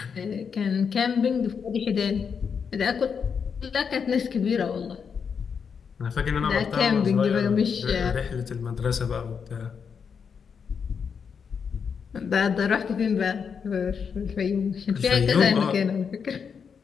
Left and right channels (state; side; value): quieter; right; 6.5 dB